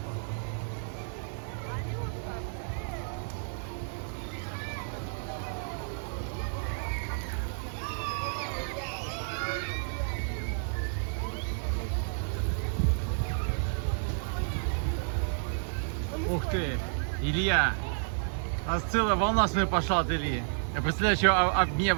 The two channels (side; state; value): left; silent; digital silence